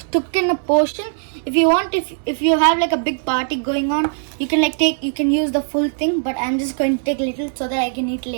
took in a portion. If you want, if you have like a big party going on, you can use the full thing, but I'm just going to take little so that I can eat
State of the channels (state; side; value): silent; left; 66 dB below the other